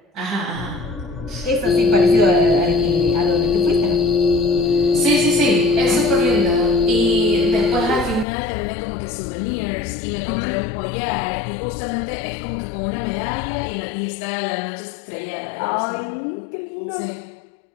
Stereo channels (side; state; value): right; drops out; at 8.2 s